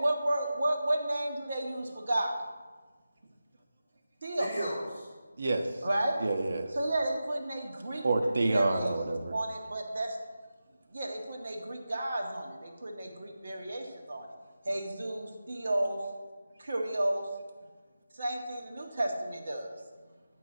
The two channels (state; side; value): inverted; both; correlation -0.93